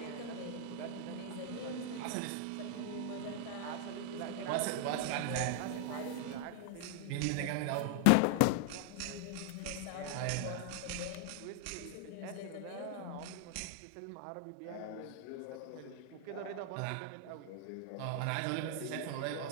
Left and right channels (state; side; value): different; both; correlation 0.00